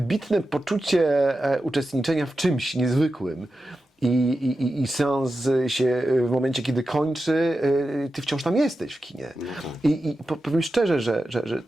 poczucie uczestniczenia w czymś niezwykłym. I seans się w momencie, kiedy kończy, ty wciąż tam jesteś w kinie. I powiem szczerze, że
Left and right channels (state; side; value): normal; both; correlation 0.91